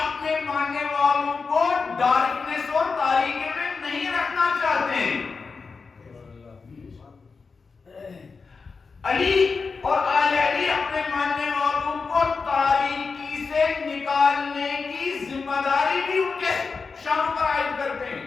ماننے والوں کو ڈارکنس اور تاریکی میں نہیں رکھنا چاہتے ہیں. علی اور آل علی اپنے ماننے والوں کو تاریکی سے نکالنے کی ذمہ داری بھی ان کے شان پر عائد کرتے ہیں.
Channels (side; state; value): right; quieter; 4.8 dB